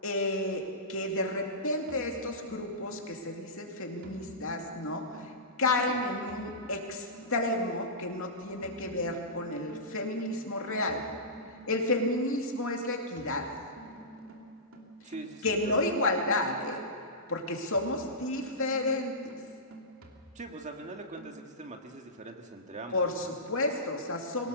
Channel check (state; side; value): normal; both; correlation -0.19